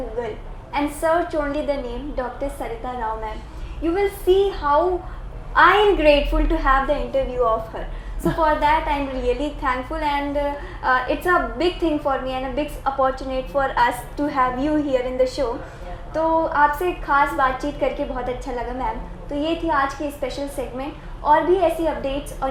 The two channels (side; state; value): both; identical; correlation 1.00